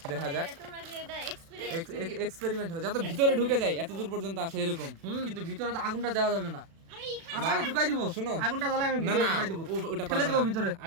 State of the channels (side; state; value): left; late; 36 ms